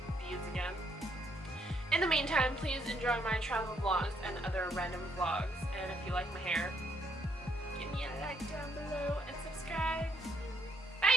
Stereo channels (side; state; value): both; normal; correlation 0.71